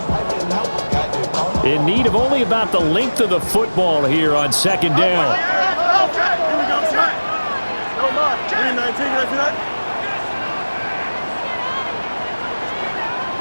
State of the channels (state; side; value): inverted; both; correlation -1.00